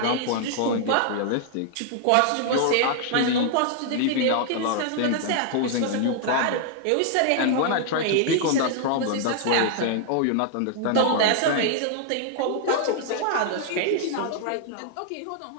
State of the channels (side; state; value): both; different; correlation 0.00